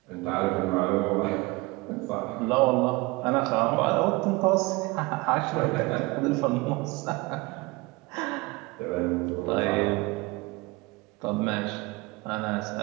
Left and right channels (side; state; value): left; quieter; 23.6 dB